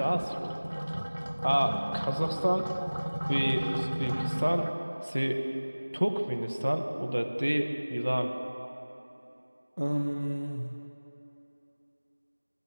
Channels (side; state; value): both; inverted; correlation -1.00